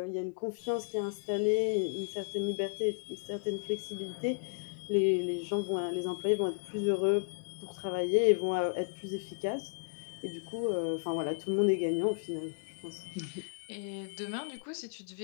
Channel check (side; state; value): right; quieter; 38.2 dB